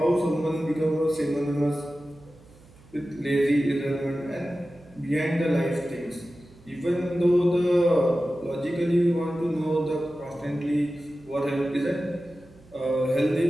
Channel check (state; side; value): noise; right; hum, 25 dB below the sound